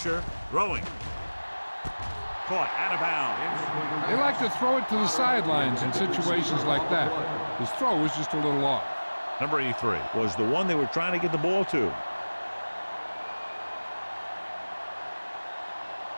throwing. Caught out of bounds. They like to throw it to the sidelines in situations like that. His throw was just a little off. Number 83 was the one they were trying to get the ball to.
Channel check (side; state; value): both; inverted; correlation -1.00